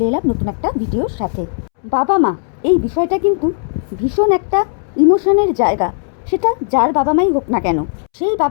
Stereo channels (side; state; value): right; silent; 68 dB below the other